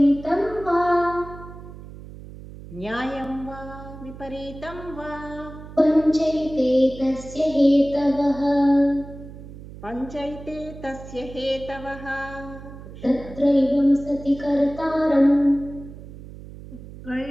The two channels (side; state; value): right; noise; hum, 15 dB below the sound